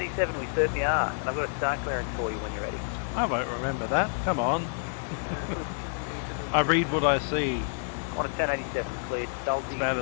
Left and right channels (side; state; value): right; silent; digital silence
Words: we certainly are. And I've got a start clearance for you when you're ready. I won't remember that. Come on. I read what I see. Qantas 1087, cleared. Salty About